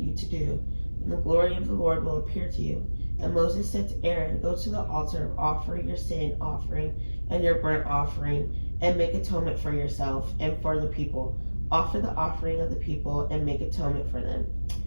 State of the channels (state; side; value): inverted; both; correlation -1.00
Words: to do, and the glory of the Lord will appear to you. And Moses said to Aaron, go to the altar, offer your sin offering and your burnt offering, and make atonement for yourself and for the people. Offer the offering of the people and make atonement for them,